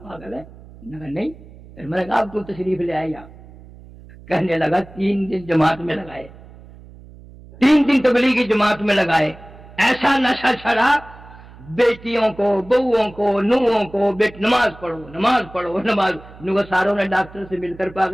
ہے؟ میں نے کہا نہیں۔ پھر میں نے کہا آپ کو تشریف لے آئے یہاں، کہنے لگا 3 دن جماعت میں لگائے، 3 دن تبلیغی جماعت میں لگائے، ایسا نشہ چھڑا، بیٹیوں کو، بہوؤں کو، نوہوں کو، نماز پڑھو نماز پڑھو نماز، نو ساروں نے ڈاکٹر سے مل کر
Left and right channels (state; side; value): noise; right; hum, 20 dB below the sound